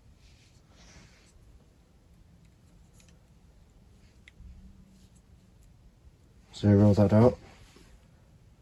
Zero that out.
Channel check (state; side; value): identical; both; correlation 1.00